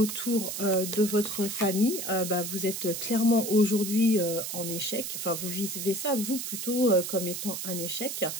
de votre famille, vous êtes clairement aujourd'hui en échec. Enfin, vous vivez ça, vous, plutôt comme étant un échec.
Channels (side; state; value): right; noise; hiss, 5 dB below the sound